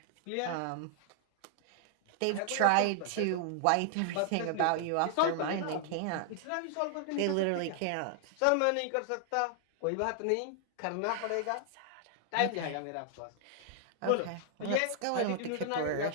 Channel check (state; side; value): different; both; correlation 0.00